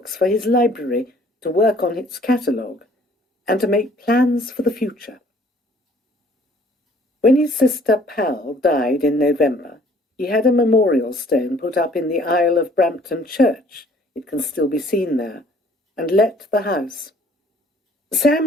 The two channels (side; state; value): both; normal; correlation 0.57